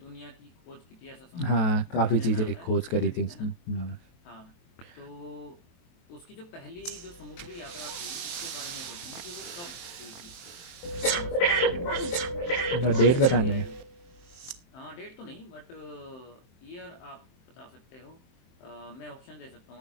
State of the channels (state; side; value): late; right; 23 ms